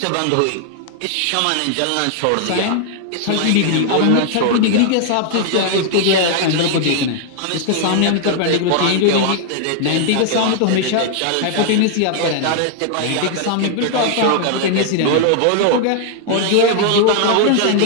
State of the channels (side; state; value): both; different; correlation 0.00